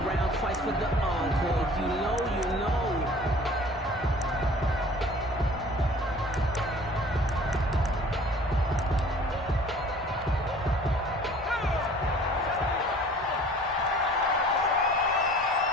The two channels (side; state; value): both; normal; correlation 0.49